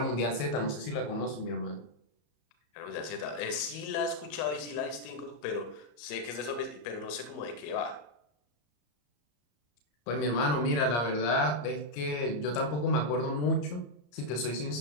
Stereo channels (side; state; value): right; late; 34 ms